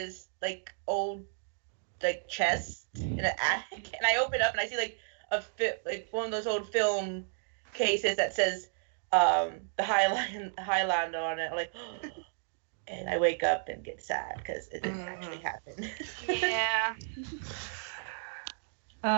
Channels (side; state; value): left; silent; digital silence